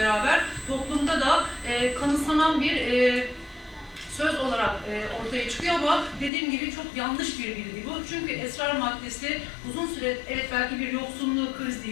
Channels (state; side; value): drops out; right; at 6.3 s